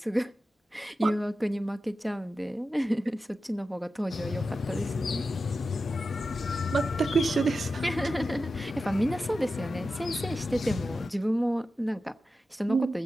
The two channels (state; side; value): normal; both; correlation 0.92